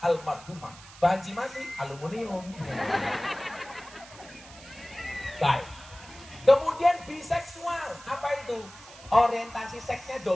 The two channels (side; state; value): right; noise; hiss, 19 dB below the sound